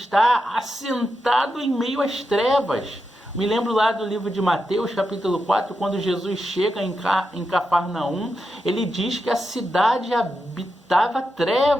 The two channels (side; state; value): both; normal; correlation 0.87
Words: assentado em meio às trevas. Me lembro lá do livro de Mateus, capítulo 4, quando Jesus chega em Cafarnaum, ele diz que a cidade habitava